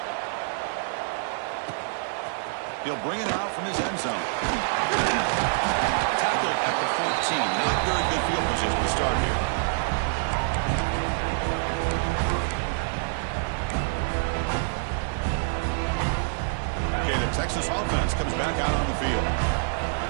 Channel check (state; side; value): silent; left; digital silence